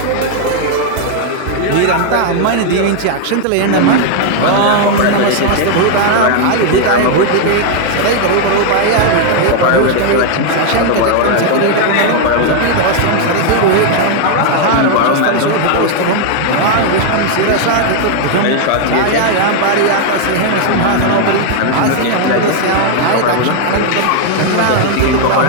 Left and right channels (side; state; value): both; different; correlation 0.00